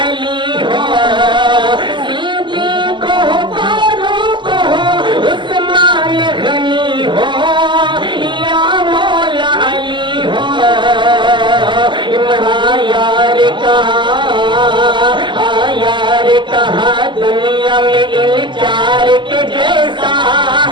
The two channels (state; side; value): late; left; 0.23 ms